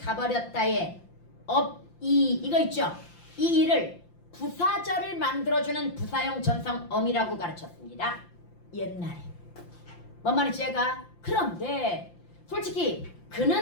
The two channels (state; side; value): late; right; 5.8 ms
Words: 없이, 이거 있죠? 이 일을 부사절을 만들어주는 부사형 전성 어미라고 가르쳤습니다. 옛날에. 뭔 말인지 얘가? 그런데 솔직히